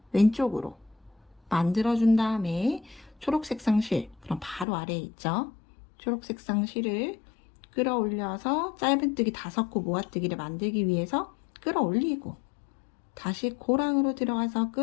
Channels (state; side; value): drops out; right; at 4.7 s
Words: 왼쪽으로 만들어준 다음에 초록색상 실, 그럼 바로 아래에 있죠. 초록색상 실을 끌어올려서 짧은뜨기 5코 모아뜨기를 만들기 위해서 끌어올리고, 다시 고랑으로 들어가서